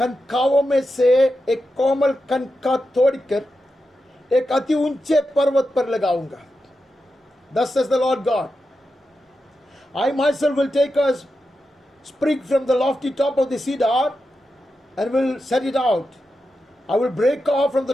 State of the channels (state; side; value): normal; both; correlation 0.89